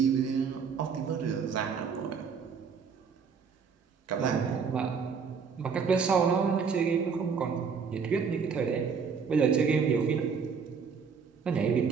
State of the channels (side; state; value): left; quieter; 5.9 dB